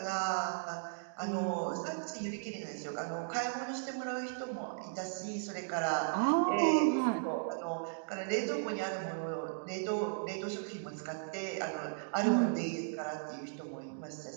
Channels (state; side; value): silent; left; digital silence